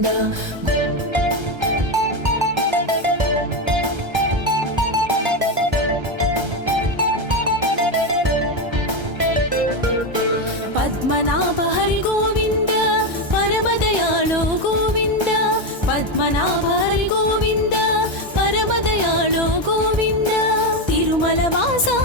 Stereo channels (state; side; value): late; left; 1.3 ms